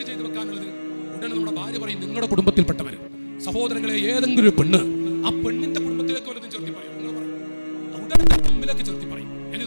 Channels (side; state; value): both; inverted; correlation -1.00